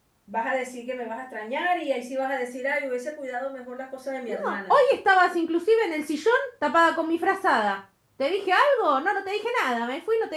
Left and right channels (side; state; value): both; identical; correlation 1.00